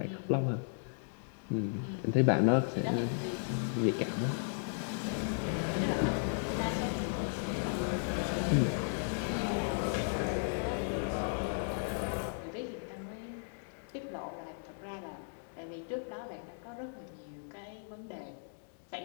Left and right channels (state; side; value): silent; right; digital silence